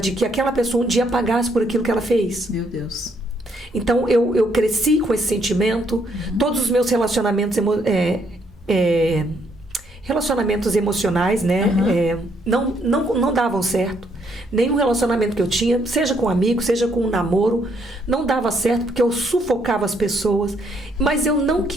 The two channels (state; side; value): normal; both; correlation 0.71